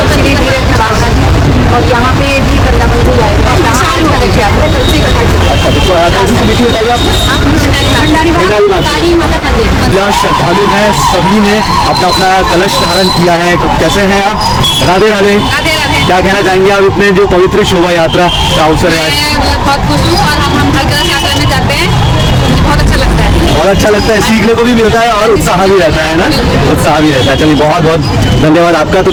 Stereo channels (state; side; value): identical; both; correlation 1.00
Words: श्री धीरे और यहाँ पे भी वृंदावन से आए यहाँ श्रद्धालु हैं, सभी ने अपना अपना कलश धारण किया है। तो कैसे हैं आप? राधे राधे। क्या कहना चाहेंगे आप इतने जो पवित्र शोभा यात्रा का अवसर है? बहुत खुश हूँ और हम हर कलश यात्रा में जाते हैं, बहुत अच्छा लगता है। बहुत अच्छा लगता है, सीखने को भी मिलता है और उत्साह भी रहता है ना, उत्साह भी रहता है। चलिए, बहुत बहुत धन्यवाद आपका। तो